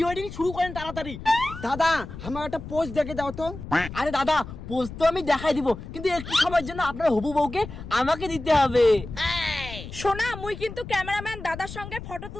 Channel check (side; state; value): left; noise; rumble, 11 dB below the sound